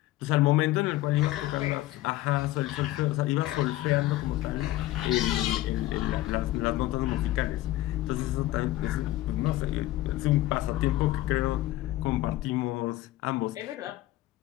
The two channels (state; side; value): quieter; right; 16.2 dB